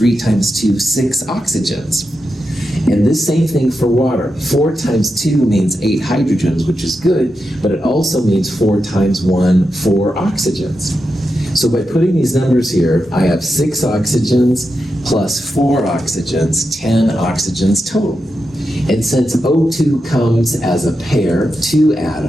times 2, 6 oxygens. And this same thing for water. 4 times 2 means 8 hydrogens, which is good, but it also means 4 times 1, 4 oxygens. So by putting these numbers here, I have 6 oxygens plus 4 oxygens, 10 oxygens total. And since O2 comes as a pair, 2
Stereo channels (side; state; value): both; normal; correlation 0.88